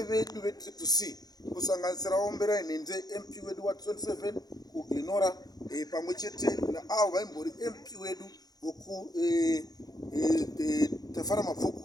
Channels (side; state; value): right; late; 0.19 ms